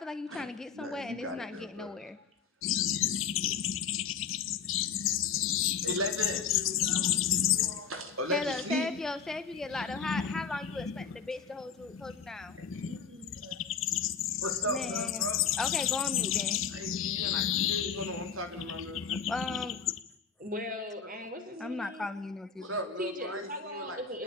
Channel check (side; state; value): right; quieter; 6.5 dB